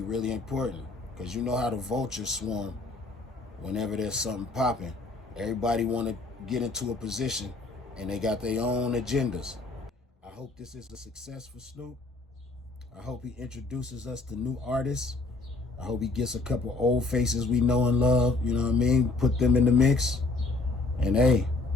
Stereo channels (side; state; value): right; quieter; 3.4 dB